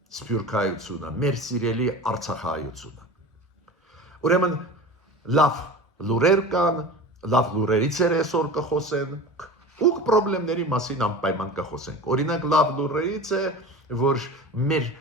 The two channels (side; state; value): both; normal; correlation 0.34